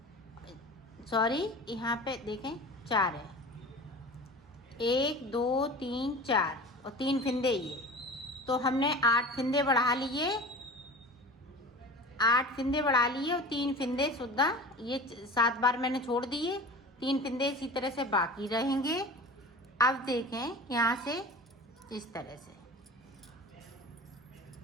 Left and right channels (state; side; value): normal; both; correlation 0.36